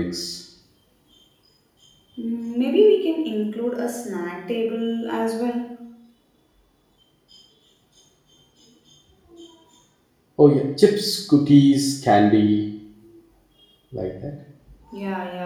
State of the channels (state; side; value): identical; both; correlation 1.00